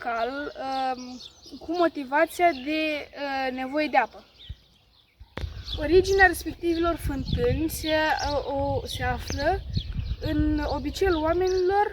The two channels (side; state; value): both; identical; correlation 1.00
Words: cu motivația de nevoie de apă. Originea respectivilor fântâni se află în obiceiul